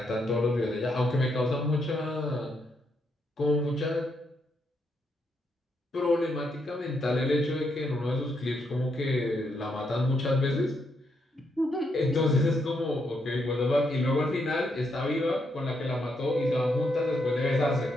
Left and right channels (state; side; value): normal; both; correlation 0.78